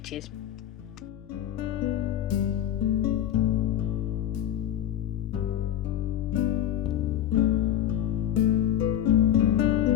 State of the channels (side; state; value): right; quieter; 11.2 dB